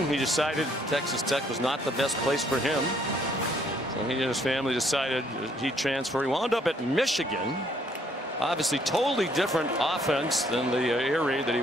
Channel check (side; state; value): both; normal; correlation 0.66